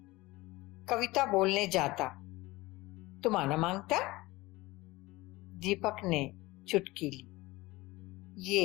कविता बोलने जाता। तुम आना मांगता? दीपक ने चुटकी ली।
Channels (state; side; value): quieter; right; 20.3 dB